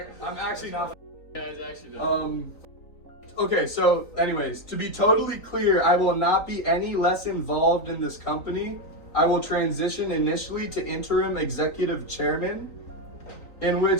actually not. Yeah, it's actually not. Okay, so anyways, to be totally clear, I will not be any less involved in this company. I will transition initially to interim executive chairman, in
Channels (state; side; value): late; right; 3.9 ms